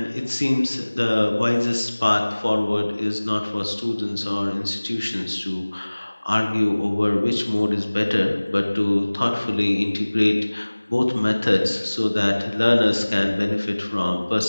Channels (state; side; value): inverted; both; correlation -1.00